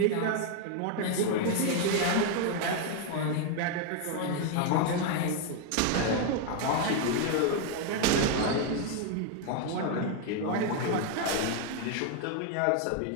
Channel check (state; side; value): different; both; correlation 0.00